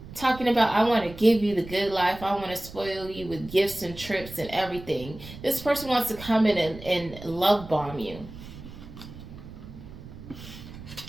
Talking about, I want to give you the good life. I want to spoil you with gifts and trips and everything. This person wants to come in and love bomb you.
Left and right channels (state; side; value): noise; right; rumble, 15 dB below the sound